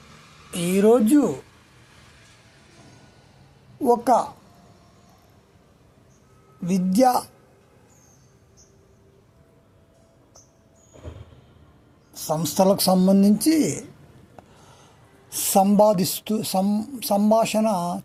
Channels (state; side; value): identical; both; correlation 1.00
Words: ఈరోజు ఒక విద్యా సంస్థలకు సంబంధించి సంభాషణ